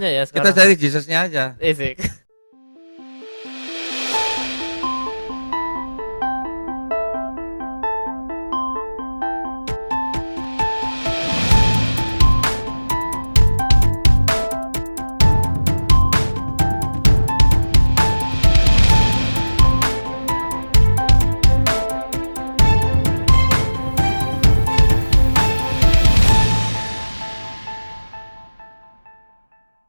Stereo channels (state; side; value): inverted; both; correlation -1.00